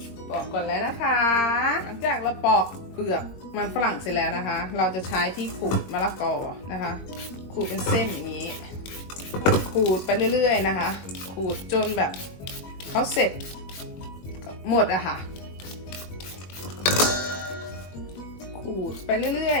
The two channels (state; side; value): late; right; 21 ms